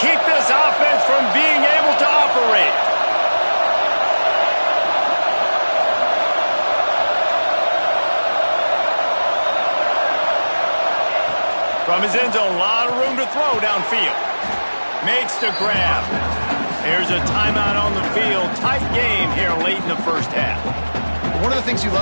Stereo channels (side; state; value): both; inverted; correlation -1.00